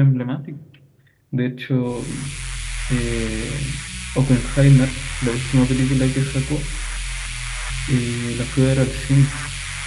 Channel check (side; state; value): both; identical; correlation 1.00